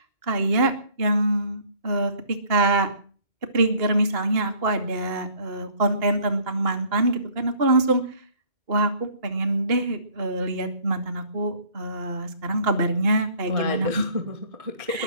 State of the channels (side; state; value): left; late; 2.2 ms